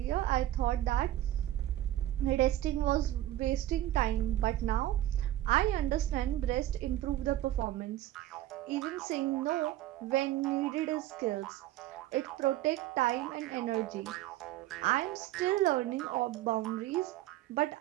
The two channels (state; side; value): quieter; left; 14.1 dB